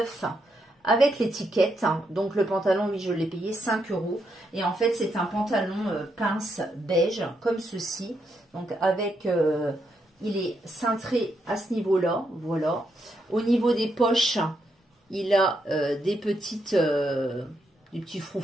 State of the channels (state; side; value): normal; both; correlation 0.79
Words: avec l'étiquette. Donc le pantalon, oui, je l'ai payé 5 €. Et en fait, c'est un pantalon pince beige, comme ceci. Donc avec, il est cintré à ce niveau-là, voilà. Au niveau des poches, il a des petites, des petits